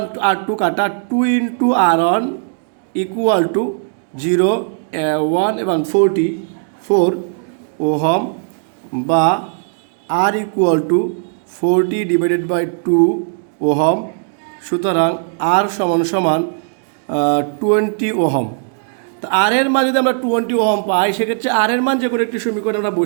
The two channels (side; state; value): left; silent; digital silence